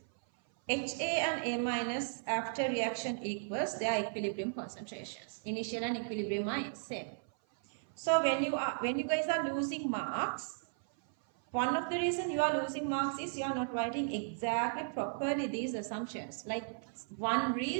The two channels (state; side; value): silent; left; 54 dB below the other